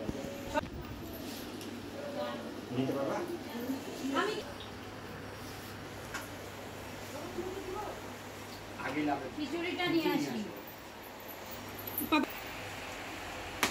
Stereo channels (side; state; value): both; identical; correlation 1.00